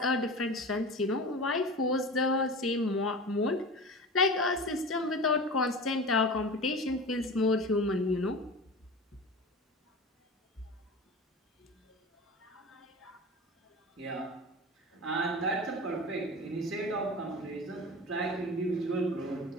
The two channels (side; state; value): both; normal; correlation 0.31